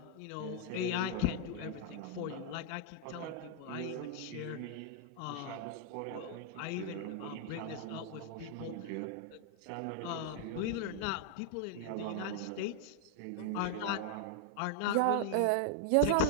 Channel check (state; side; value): different; both; correlation -0.01